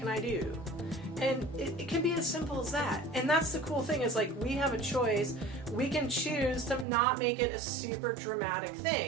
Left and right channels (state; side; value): drops out; left; at 6.9 s